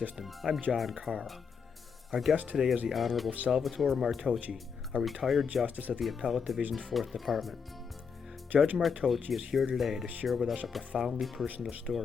I'm John Carr. Our guest today is the Honorable Salvatore Martoche, a retired justice of the Appellate Division's 4th Department. Judge Martoche is here today to share with us a profoundly personal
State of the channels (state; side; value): quieter; right; 6.1 dB